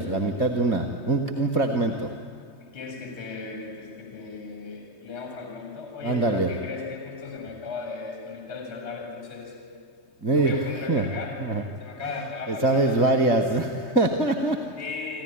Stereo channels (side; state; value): right; late; 3.2 ms